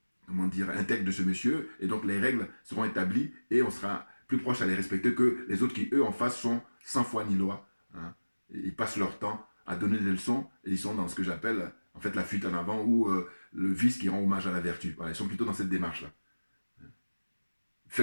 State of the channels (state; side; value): inverted; both; correlation -1.00